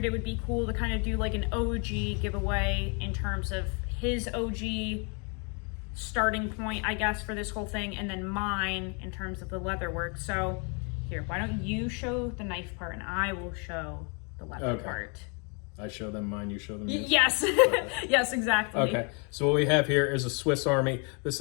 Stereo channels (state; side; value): quieter; right; 35.5 dB